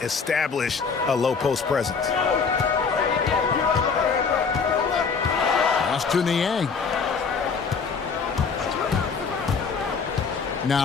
a low post presence. Pass to Niang.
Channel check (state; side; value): quieter; right; 5.4 dB